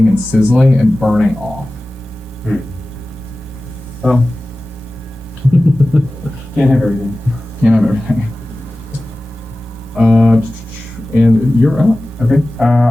and sizzling and burning off. Well, can't have everything. Can't have everything. And you're up. Okay,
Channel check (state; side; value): normal; both; correlation 0.96